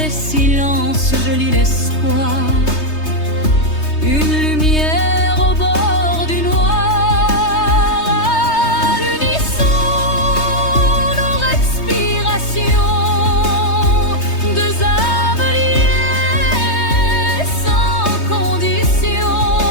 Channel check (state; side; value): late; right; 3.2 ms